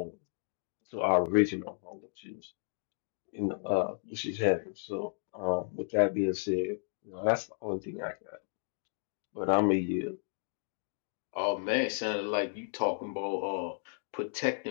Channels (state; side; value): silent; right; digital silence